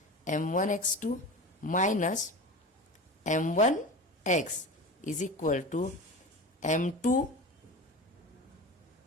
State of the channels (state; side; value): normal; both; correlation 0.30